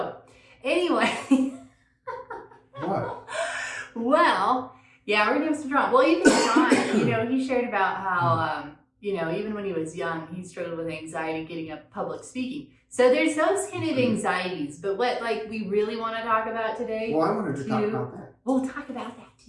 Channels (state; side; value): identical; both; correlation 1.00